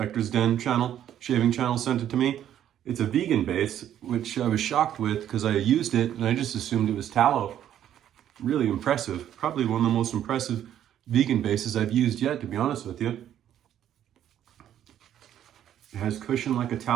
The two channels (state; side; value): quieter; left; 10.8 dB